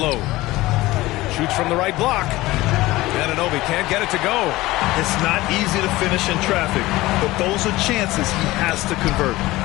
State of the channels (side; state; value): right; quieter; 18.6 dB